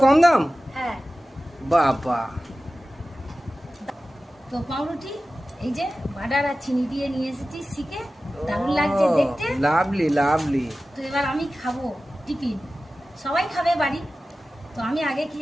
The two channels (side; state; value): both; normal; correlation 0.95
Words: কম দাম? হ্যাঁ। বাবা। তো পাউরুটি এই যে বাটার আর চিনি দিয়ে নিয়ে এসেছি শিখে, দারুণ লাগছে দেখতে। Lovely lovely. তো এবার আমি খাবো টিফিন, সবাই খাবে বাড়ি, তো আমি আগে